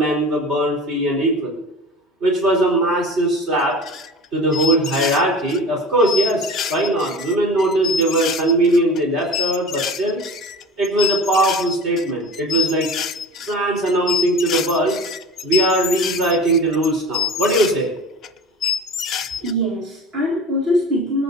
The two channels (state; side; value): normal; both; correlation 0.36